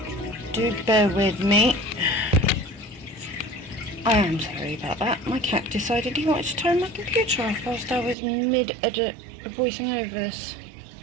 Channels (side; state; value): left; drops out; at 8.2 s